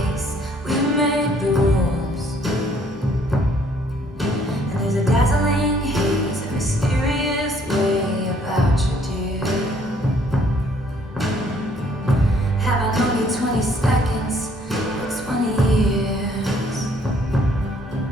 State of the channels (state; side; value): normal; both; correlation 0.63